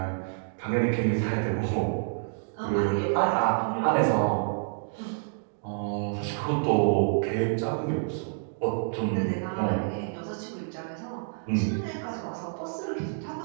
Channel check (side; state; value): left; silent; digital silence